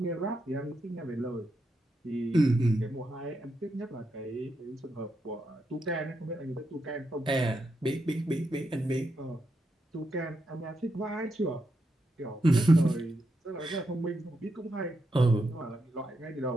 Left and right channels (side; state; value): both; normal; correlation 0.83